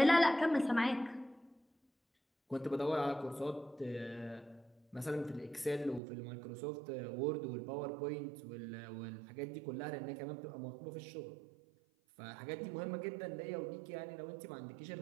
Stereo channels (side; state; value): left; drops out; at 6.0 s